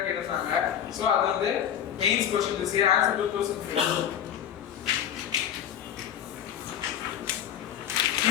கேட்டாங்க. So அது வந்து main question this year. Answer 2005.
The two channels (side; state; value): right; quieter; 9.8 dB